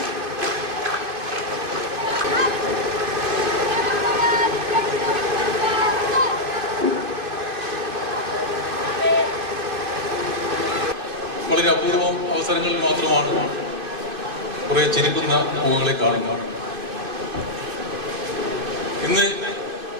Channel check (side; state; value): left; late; 2.6 ms